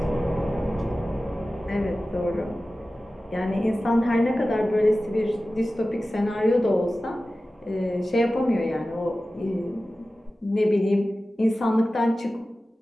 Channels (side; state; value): both; normal; correlation 0.95